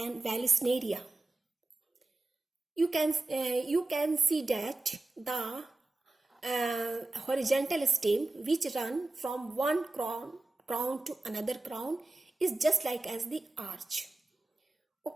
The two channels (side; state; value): left; quieter; 3.0 dB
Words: vallisneria. You can see that the horizontal stem which run from one crown to another crown is just like as the arch.